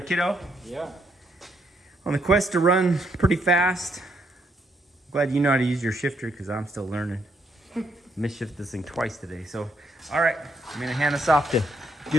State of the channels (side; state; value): both; normal; correlation 0.74